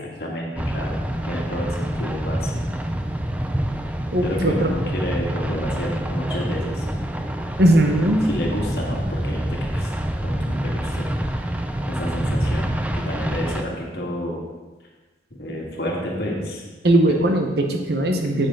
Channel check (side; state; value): both; normal; correlation 0.76